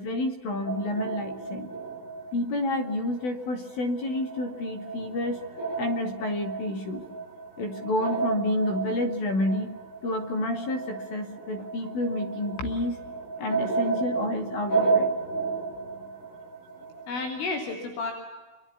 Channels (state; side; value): late; right; 16 ms